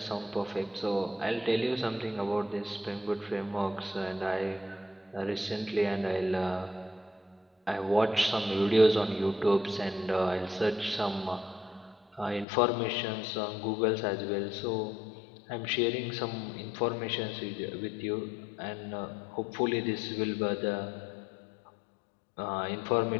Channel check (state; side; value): drops out; right; at 12.5 s